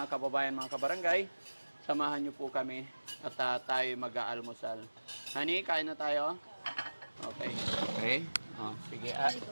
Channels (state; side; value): inverted; both; correlation -1.00